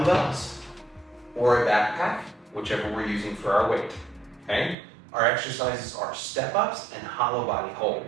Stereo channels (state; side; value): drops out; left; at 4.8 s